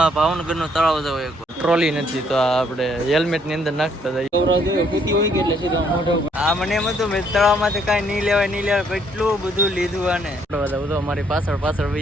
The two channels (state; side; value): normal; both; correlation 0.67